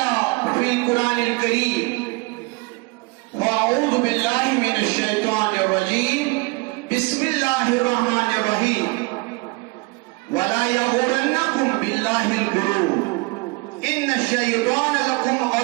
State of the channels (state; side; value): quieter; left; 26.7 dB